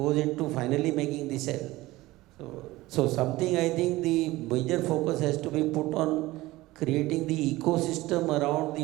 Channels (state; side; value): quieter; left; 18.7 dB